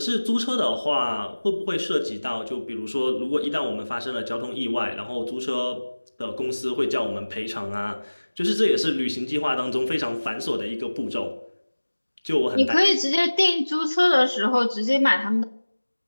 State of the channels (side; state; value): both; inverted; correlation -1.00